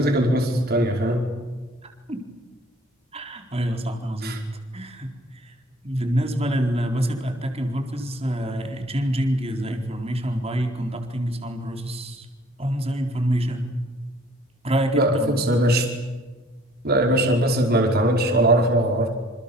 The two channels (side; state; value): both; normal; correlation 0.56